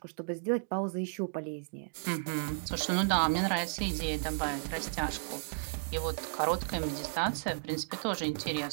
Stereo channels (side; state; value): left; silent; digital silence